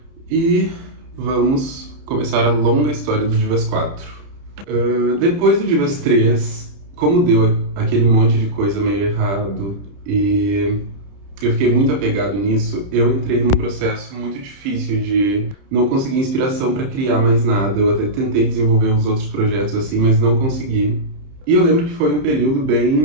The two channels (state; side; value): late; left; 31 ms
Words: e vamos começar a longa história do Divas 4. Depois do Divas 3, como deu aquele monte de coisa meio errado e eu fiquei muito apegado nisso, eu entrei num processo muito difícil de não conseguir inspiração para criar mais nada. Eu até tentei desenvolver os outros projetos assim, mas não consegui. E eu lembro que foi um período